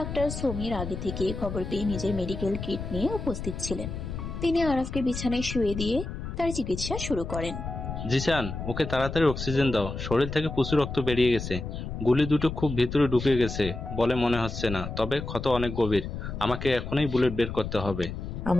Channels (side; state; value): left; noise; rumble, 7 dB below the sound